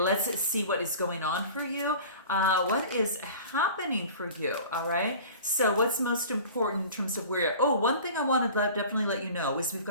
see what is going on for you. What is happening for you? All right. So what's most important in terms of where you're... Oh, one thing I want to definitely let you know is we've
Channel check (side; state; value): both; inverted; correlation -0.41